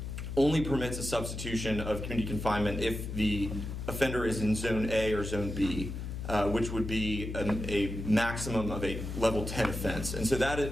only permits a substitution of community confinement if the offender is in Zone A or Zone B, which would be a maximum of a level 10 offense. And so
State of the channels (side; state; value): left; noise; hum, 6 dB below the sound